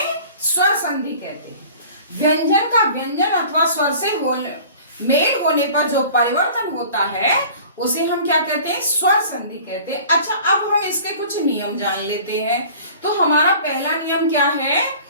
स्वर संधि कहते हैं। व्यंजन का व्यंजन अथवा स्वर से मेल होने पर जो परिवर्तन होता है उसे हम क्या कहते हैं? स्वर संधि कहते हैं। अच्छा, अब हम इसके कुछ नियम जान लेते हैं। तो हमारा पहला नियम क्या है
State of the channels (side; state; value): both; inverted; correlation -0.45